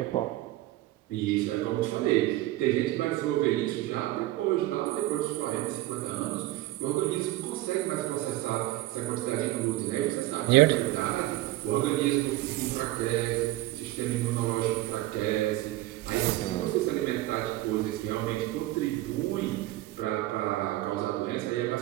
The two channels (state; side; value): quieter; left; 16.7 dB